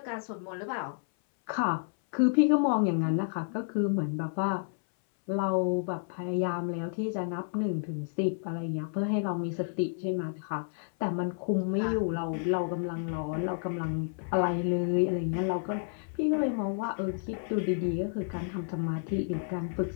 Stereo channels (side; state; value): right; silent; 57 dB below the other